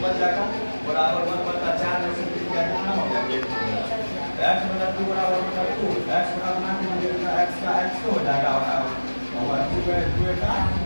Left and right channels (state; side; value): inverted; both; correlation -1.00